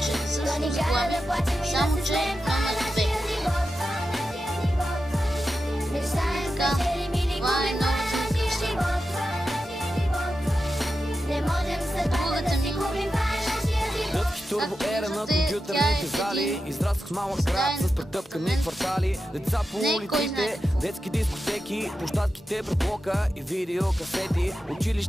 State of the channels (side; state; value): both; normal; correlation 0.91